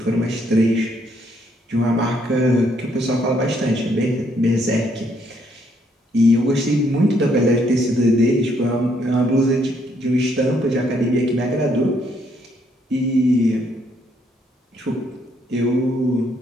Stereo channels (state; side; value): normal; both; correlation 0.71